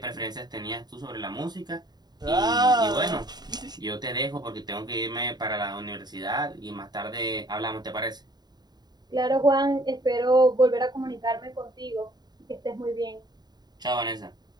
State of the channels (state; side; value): late; left; 0.20 ms